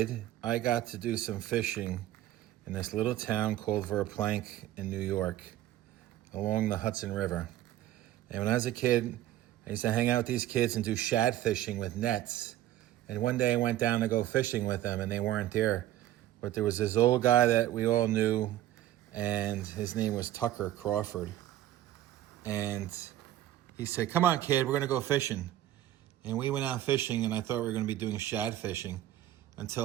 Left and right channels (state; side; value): quieter; left; 13.5 dB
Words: I got to do some fishing in this little town called Verplank in New York, along the Hudson River. And when I was a kid, I used to hang out with these kids and do shad fishing with nets. And one day I went down to go fishing with them, and they weren't there. But there was this old guy that we all knew, and his name was Tucker Crawford. And he said, "Come on, kid, we're going to go fishing." And we went out fishing, and I thought we were going to be doing shad fishing